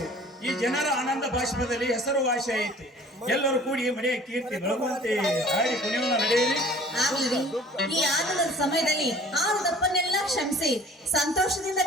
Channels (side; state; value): both; normal; correlation 0.49